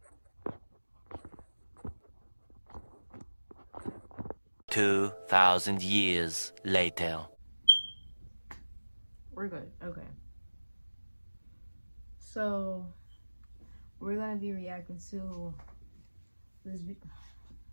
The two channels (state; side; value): inverted; both; correlation -1.00